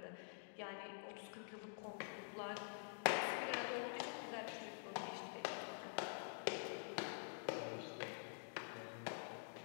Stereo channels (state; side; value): silent; right; digital silence